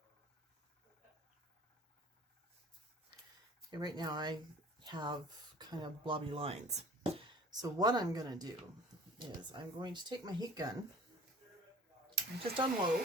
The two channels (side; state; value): both; normal; correlation 0.47